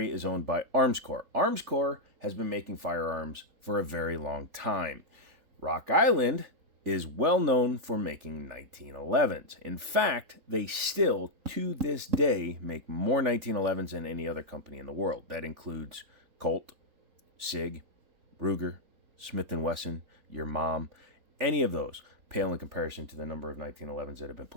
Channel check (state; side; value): late; left; 3.4 ms